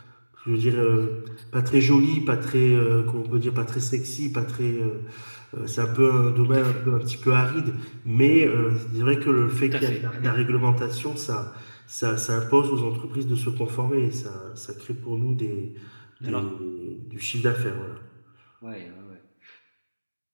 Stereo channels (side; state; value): both; inverted; correlation -1.00